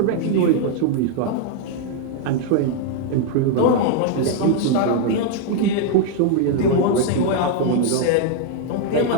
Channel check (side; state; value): both; different; correlation 0.00